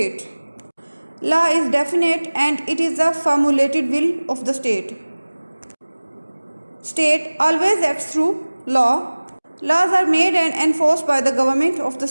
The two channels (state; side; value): inverted; both; correlation -1.00